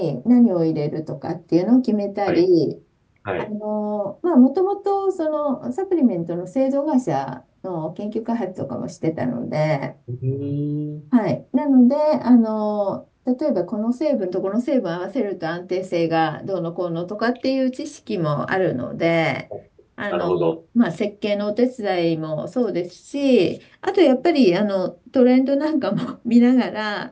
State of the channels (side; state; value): both; identical; correlation 1.00